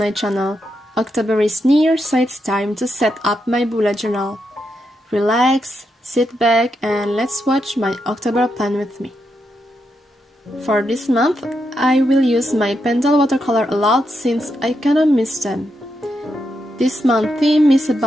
channel. October is near, so it's time to set up my bullet journal. Relax, sit back and let's watch my October plan with me. For this month, I will use my Pentel watercolor a lot since I kinda miss them. This month theme is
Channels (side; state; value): both; normal; correlation 0.83